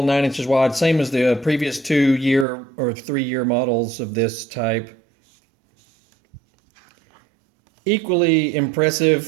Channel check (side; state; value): left; drops out; at 2.5 s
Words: 9 inches wide, same as the previous 2-year or 3-year models of this type. Equally